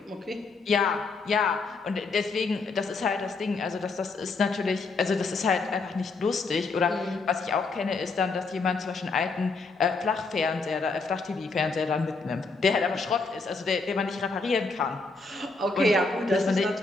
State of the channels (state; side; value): quieter; right; 3.9 dB